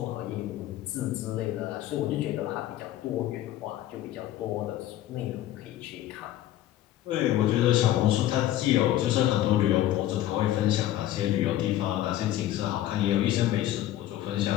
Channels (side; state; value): right; quieter; 13.5 dB